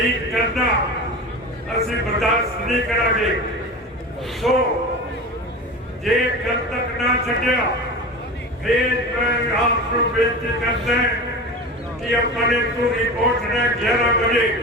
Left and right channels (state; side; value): normal; both; correlation 0.30